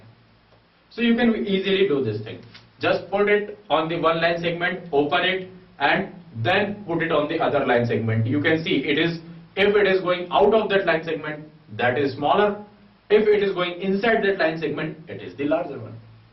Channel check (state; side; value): identical; both; correlation 1.00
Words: So you can easily do this thing. Just put it on the one line segment, open it, and then put it on the other line segment. You can see it is, if it is going out of that line segment, that is smaller. If it is going inside that line segment, it is the larger one.